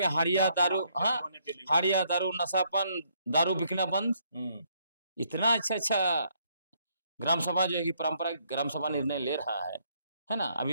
हाड़िया दारू, हाँ, हाड़िया दारू, नशापन, दारू बिकना बंद। इतना अच्छा अच्छा ग्राम सभा जो है कि परंपरागत ग्राम सभा निर्णय ले रहा है ना। अभी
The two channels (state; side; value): inverted; both; correlation -0.71